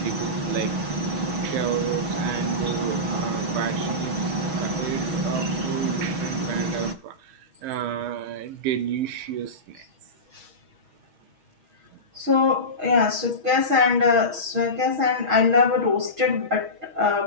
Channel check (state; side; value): late; left; 6.3 ms